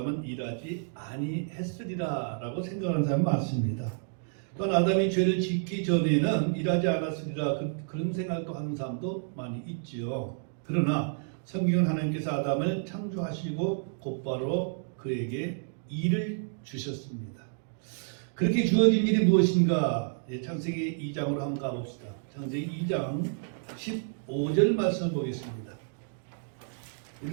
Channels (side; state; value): left; silent; digital silence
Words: 일하지 아니했으리라 라고 생각하는 사람이 많습니다. 또한 아담이 죄를 짓기 전에는 일하지 않았으리라 그런 생각도 하는 사람도 많이 있지요. 그러나 성경은 하나님께서 아담을 창조하시고 곧바로 그에게 일을 주셨습니다. 그렇게 주어진 일이 무엇인가? 창세기 2장으로 한번 가봅시다. 창세기 2장 15절 말씀을 보겠습니다.